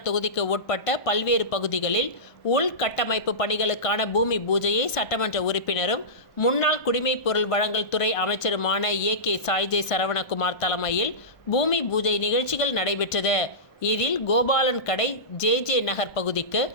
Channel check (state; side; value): late; right; 1.5 ms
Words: தொகுதிக்கு உட்பட்ட பல்வேறு பகுதிகளில் உள்கட்டமைப்பு பணிகளுக்கான பூமி பூஜையை சட்டமன்ற உறுப்பினரும் முன்னாள் குடிமைப் பொருள் வழங்கல் துறை அமைச்சருமான ஏ.கே. சாய்ஜே சரவணகுமார் தலைமையில் பூமி பூஜை நிகழ்ச்சிகள் நடைபெற்றது. இதில் கோபாலன் கடை ஜே நகர் பகுதிக்கு